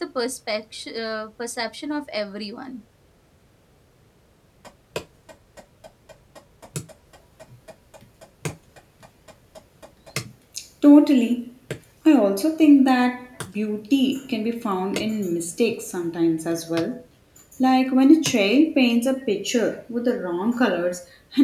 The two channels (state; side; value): identical; both; correlation 1.00